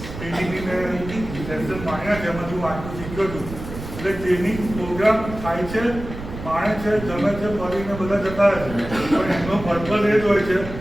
ટ્રેનિંગની સેશન માણ્યા છે, એમાં હું આટલું શીખ્યો છું. એટલે ટ્રેનિંગ પ્રોગ્રામ થાય છે, માણે છે, જમે છે, ફરીને બધા જતા રહે છે, પણ એમનો પર્પઝ એ જ હોય છે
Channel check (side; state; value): right; noise; rumble, 10 dB below the sound